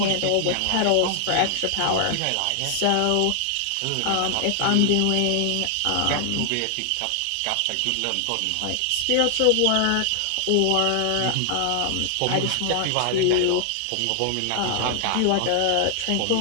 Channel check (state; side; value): different; both; correlation 0.00